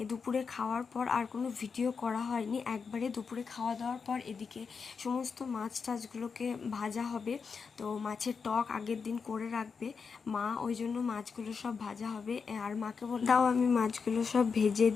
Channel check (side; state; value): right; quieter; 5.5 dB